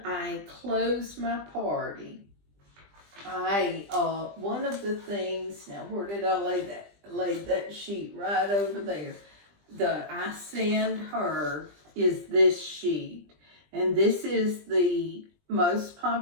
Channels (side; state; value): left; late; 20 ms